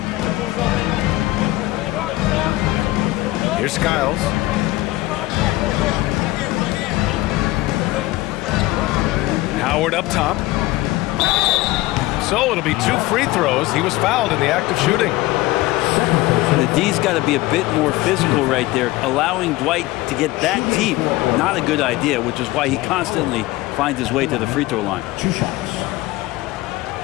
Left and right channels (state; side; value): quieter; right; 18.7 dB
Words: Here's Skiles. Howard up top. So it'll be 2 free throws. He was fouled in the act of shooting. The D's got to be a bit more physical right there. Allowing Dwight to get that deep, not a good idea, which is why he constantly finds his way to the free throw line. 2 shots.